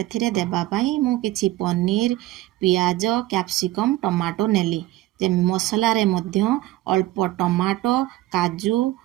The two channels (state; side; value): quieter; left; 16.3 dB